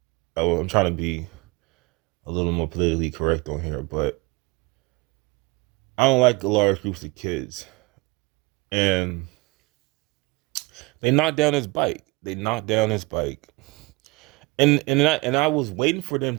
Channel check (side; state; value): left; quieter; 24.7 dB